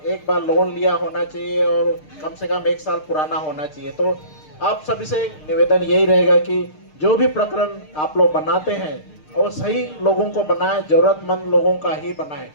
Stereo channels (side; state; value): right; late; 6.6 ms